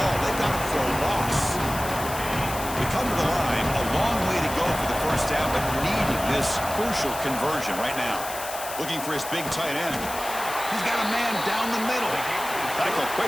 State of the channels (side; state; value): left; noise; hiss, 9 dB below the sound